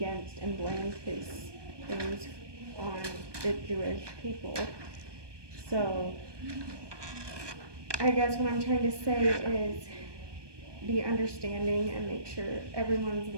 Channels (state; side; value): late; left; 1.2 ms